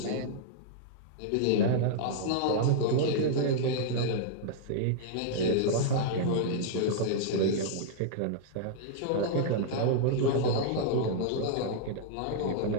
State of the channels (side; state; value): both; different; correlation -0.02